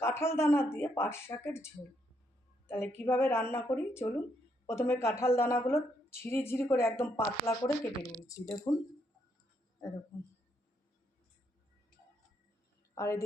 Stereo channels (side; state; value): both; normal; correlation 0.75